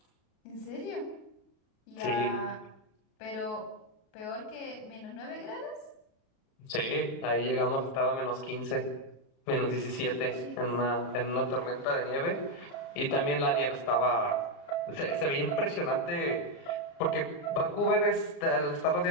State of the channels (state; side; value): late; right; 36 ms